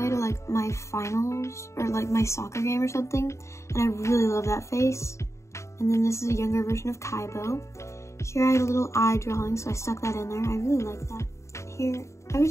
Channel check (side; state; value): right; late; 0.14 ms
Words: to like my finals or like my soccer game or something, and I really love that face. And then this is a younger version of Kaibo. Here I had a little eye drawing, so I stuck that in there. I really like that. Here,